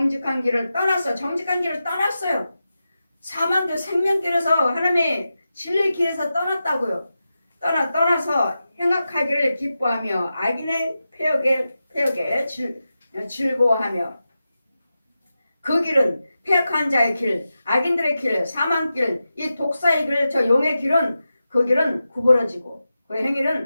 길을 떠났어요. 사망길, 생명길에서 하나님의 진리의 길에서 떠났다고요. 떠나서 행악하기를 기뻐하며 악인의 패역에 즐거워하며 그 길은 패역한 자의 길, 악인들의 길, 사망길, 이 독사의 길, 저 용의 길은 그 길은 구부러지고 그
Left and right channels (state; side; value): inverted; both; correlation -0.91